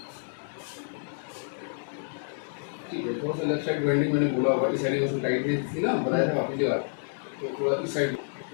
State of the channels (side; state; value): right; silent; digital silence